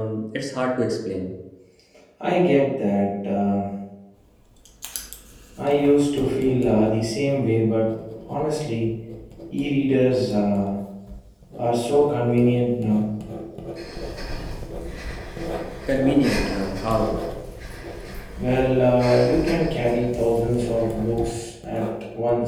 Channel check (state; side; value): identical; both; correlation 1.00